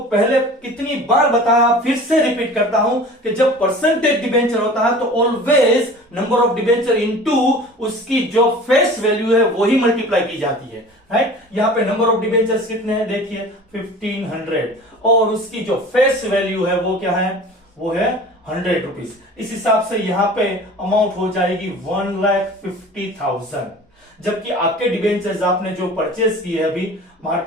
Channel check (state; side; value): normal; both; correlation 0.41